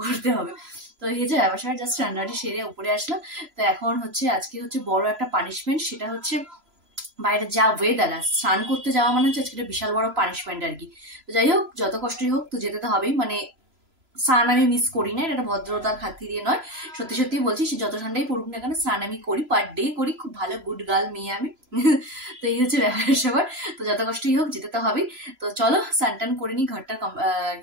হবে। তো এই যে ব্যবসায় জাস্ট রান্নাটি সেরে উপরে আসলাম। তো এখন হচ্ছে আজকে হচ্ছে বড় একটা পানিশমেন্ট, সেটা হচ্ছে বাইরে যা ওয়েদার, স্নান করতে যাওয়া মানে হচ্ছে আজকে বিশাল বড় পানিশমেন্ট আর কি। তো যাই হোক, যত কষ্টই হোক তো যেতে তো হবেই। মানে স্নান আমি মিস করি না, এটা ভদ্রতার খাতিরে নয়, সত্যি সত্যি বলছি, সে যত ঠান্ডাই পড়ুক না কেন স্নান আমি করি, পার ডে করি, খুব ভালো গুড গার্ল মেয়ে আমি। তো এই হচ্ছে ব্যাপার সবার। তো যত কষ্টই হোক যেতে তো হবেই। তো চলো স্নান টান করে নিই, ঘরটা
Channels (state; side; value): late; left; 3.0 ms